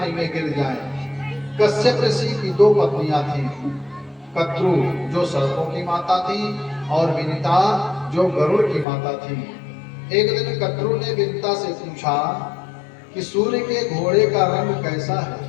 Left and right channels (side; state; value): right; drops out; at 8.8 s